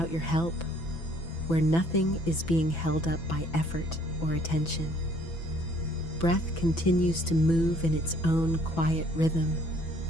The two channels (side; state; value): right; late; 6.0 ms